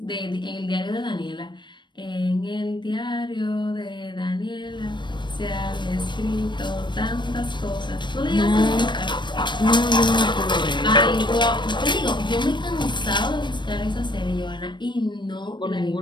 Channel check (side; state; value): right; late; 0.22 ms